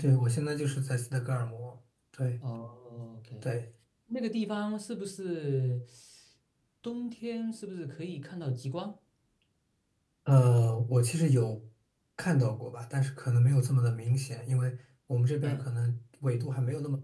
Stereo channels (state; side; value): identical; both; correlation 1.00